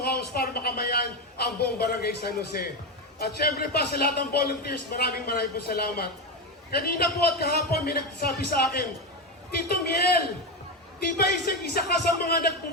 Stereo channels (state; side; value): normal; both; correlation 0.13